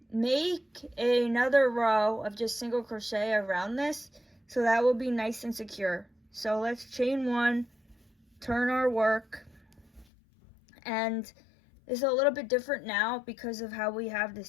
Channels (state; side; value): drops out; right; at 10.1 s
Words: make another row of just single crochet around this, so that will be nice and secure. So let's chain one, turn our work, and it's a little bit different now because of how we have